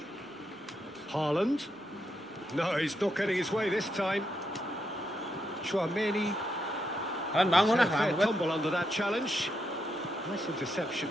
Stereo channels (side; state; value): both; normal; correlation 0.81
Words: Haaland. No, he's not getting his way this time. Chouameni. Kalian bangun ah, Fair lambat. tumble under that challenge. Nice interception.